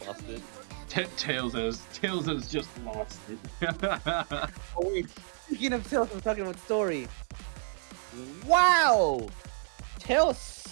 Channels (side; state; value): left; silent; digital silence